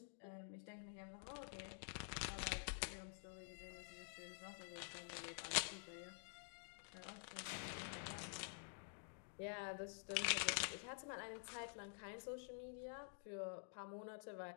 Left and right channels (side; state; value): right; silent; digital silence